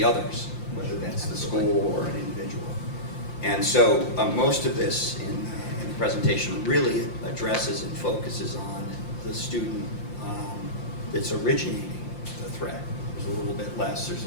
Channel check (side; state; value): right; late; 5.8 ms